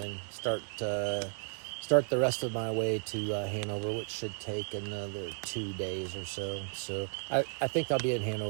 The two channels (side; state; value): left; silent; 55 dB below the other